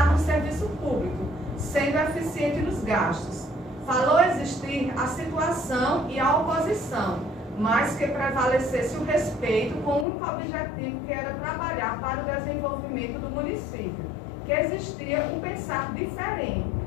no serviço público, sendo eficiente nos gastos. Falou existir a situação e a oposição, mas que prevalecesse o respeito com o único objetivo que era trabalhar para o desenvolvimento do município, que existia um pensar diferente,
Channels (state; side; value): drops out; right; at 10.1 s